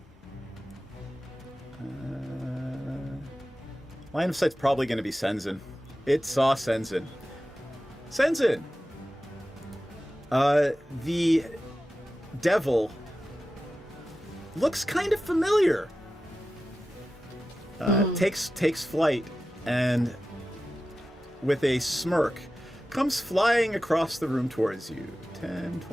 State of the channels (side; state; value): both; normal; correlation 0.94